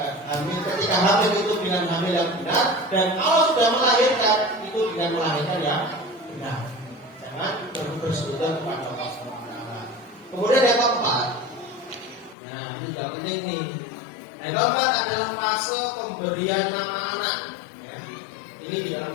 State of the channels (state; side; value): drops out; right; at 12.4 s